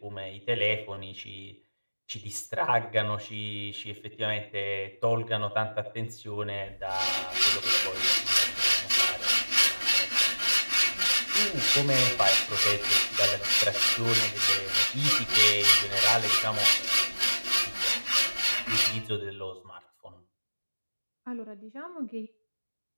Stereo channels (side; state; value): both; inverted; correlation -1.00